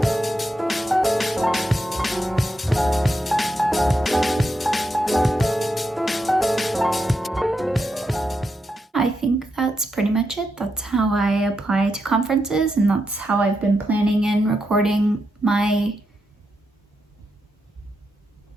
I think that's pretty much it. That's how I apply to conferences, and that's how I've been planning and recording my,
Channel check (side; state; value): both; normal; correlation 0.84